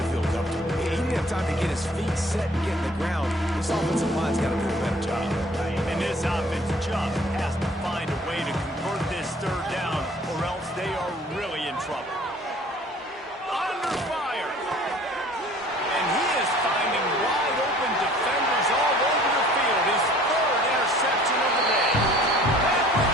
feel comfortable. He didn't have time to get his feet set and get in the ground. This offensive line's got to do a better job. And this offense just has to find a way to convert this third down, or else they are really in trouble. Under fire. And he is finding wide open defenders all over the field. His third interception of the day. And with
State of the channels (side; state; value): both; normal; correlation 0.52